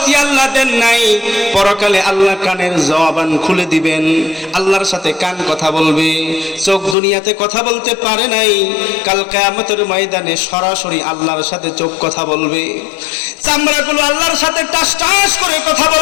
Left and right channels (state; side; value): drops out; right; at 7.0 s